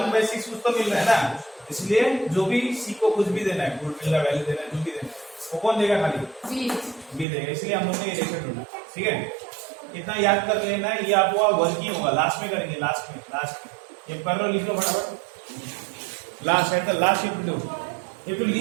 कुछ तो मिल रहा है ना, इसलिए जो भी सी को कुछ भी देना है, गुडविल का वैल्यू देना है, जो भी देना है, वो कौन देगा खाली? B. बी देगा, इसलिए हम लोग ने ये रेशियो ढूंढा। ठीक है, इतना याद कर लेना, ये आपका वर्किंग होगा, लास्ट में करेंगे, लास्ट में ये कर लो, लिख लो फटाफट। लास्ट है तो last you have to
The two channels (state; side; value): drops out; left; at 7.2 s